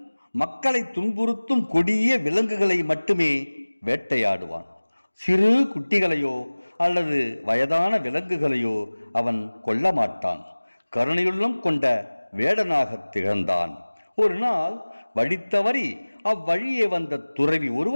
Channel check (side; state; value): both; inverted; correlation -1.00